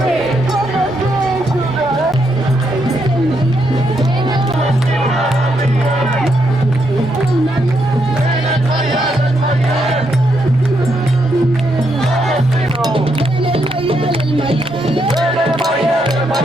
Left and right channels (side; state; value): both; normal; correlation 0.78